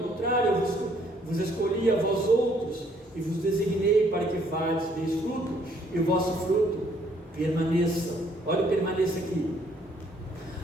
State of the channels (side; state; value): both; normal; correlation 0.65